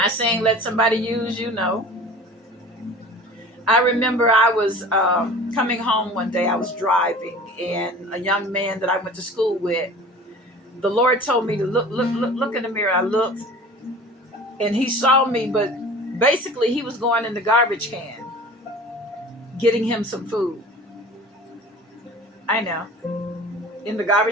saying let somebody use you? No. I remember I was coming home one day. I was driving, and a young man that I went to school with, the Lord told me to look in the mirror. I looked, and he saw me, but basically he was going in the garbage can, getting him some food. I know. In the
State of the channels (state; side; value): normal; both; correlation 0.41